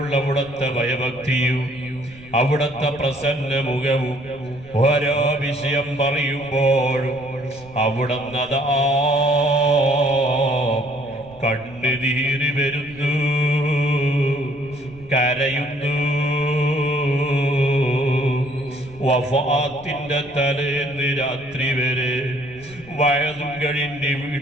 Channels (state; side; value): noise; right; rumble, 22 dB below the sound